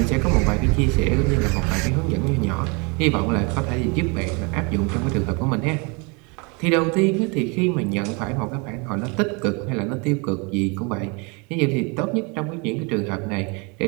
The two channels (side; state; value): left; quieter; 30.8 dB